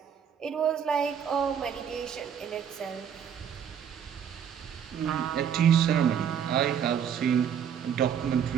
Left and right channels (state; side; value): quieter; left; 8.3 dB